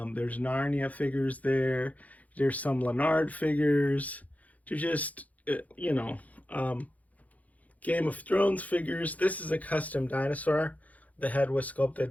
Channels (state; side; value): late; right; 0.074 ms